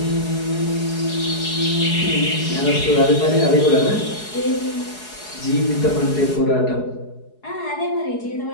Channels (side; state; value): right; late; 4.7 ms